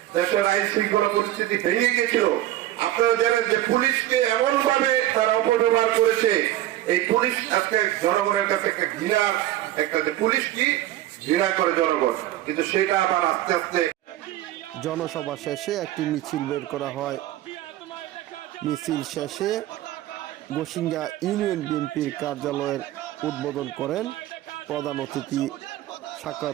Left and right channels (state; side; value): quieter; left; 14.1 dB